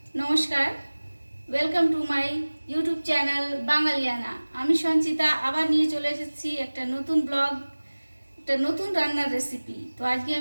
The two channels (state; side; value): inverted; both; correlation -1.00